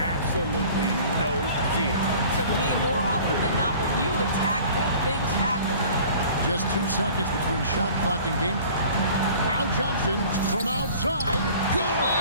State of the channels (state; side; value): inverted; both; correlation -0.47